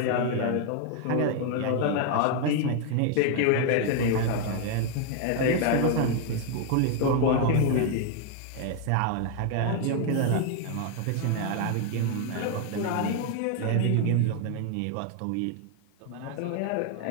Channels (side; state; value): both; different; correlation 0.00